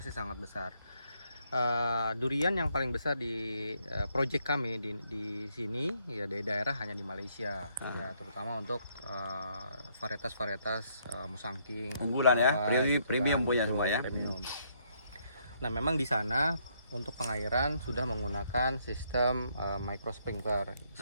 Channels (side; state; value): both; inverted; correlation -0.71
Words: sangat besar. Durian yang paling besar di project kami di sini ya di daerah hanya di Malaysia, ya terutama untuk varietas-varietas musangking Unggulan ya, gitu premium kan, punya betul, semua ya. premium. Nah, memang di sana untuk pengairan sudah menggunakan sistem micro sprinkler